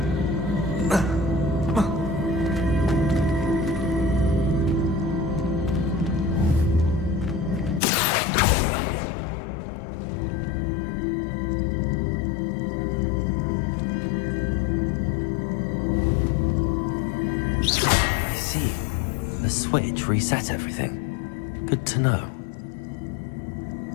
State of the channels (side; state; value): right; drops out; at 7.8 s